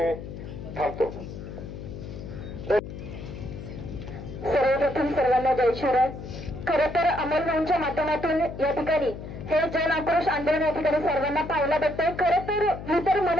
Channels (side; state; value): left; noise; hum, 10 dB below the sound